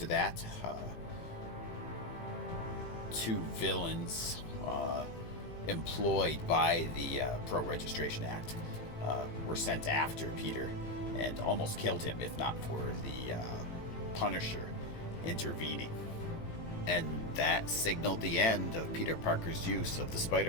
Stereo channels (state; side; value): late; right; 18 ms